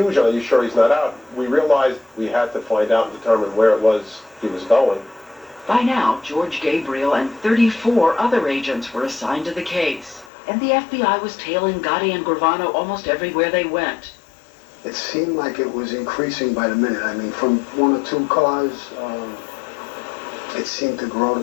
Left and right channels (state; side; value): drops out; right; at 10.3 s